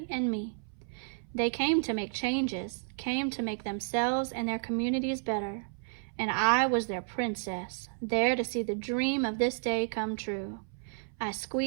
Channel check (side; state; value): left; silent; 57 dB below the other